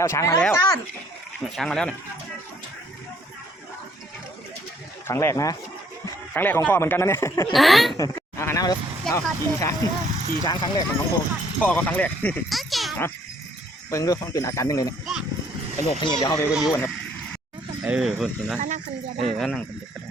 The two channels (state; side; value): normal; both; correlation 0.64